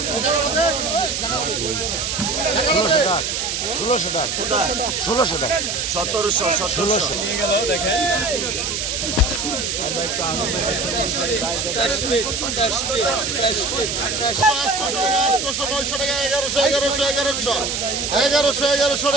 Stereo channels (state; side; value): noise; right; hiss, 2 dB below the sound